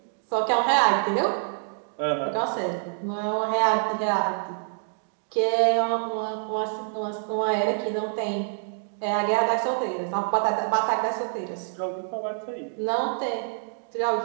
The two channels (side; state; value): left; silent; digital silence